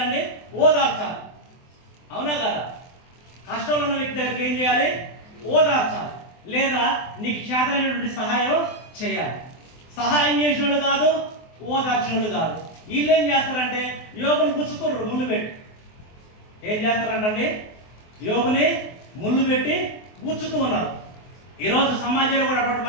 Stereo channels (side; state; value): right; late; 24 ms